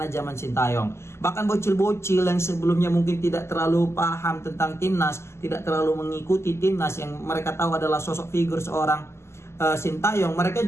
zaman Sintayong. Bahkan bocil-bocil yang sebelumnya mungkin tidak terlalu paham tentang timnas, tidak terlalu mengikuti timnas, yang mereka tahu adalah sosok figur seorang Sintayong,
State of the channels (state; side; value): late; right; 0.13 ms